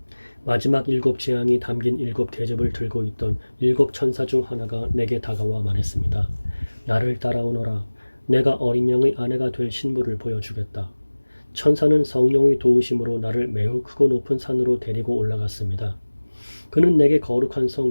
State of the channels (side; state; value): both; inverted; correlation -1.00